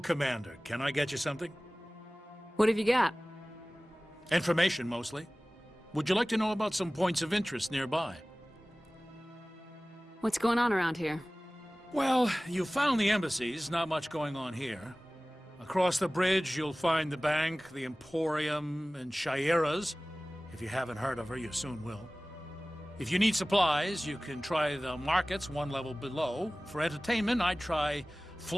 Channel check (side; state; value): both; normal; correlation 0.98